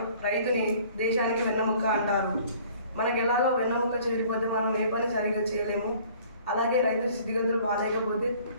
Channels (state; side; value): inverted; both; correlation -0.53